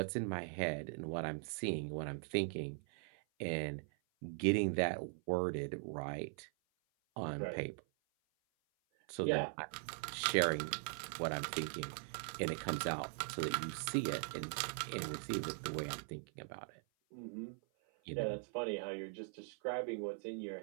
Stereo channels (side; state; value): left; silent; 50 dB below the other